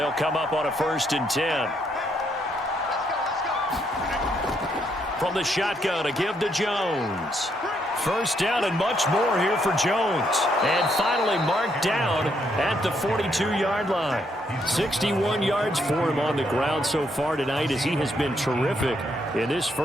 come up on a 1st and 10. From the shotgun, a give to Jones. First down and much more here for Jones. And finally marked down at the 42-yard line. 61 yards for him on the ground so far tonight as he has been terrific in this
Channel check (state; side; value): normal; both; correlation 0.74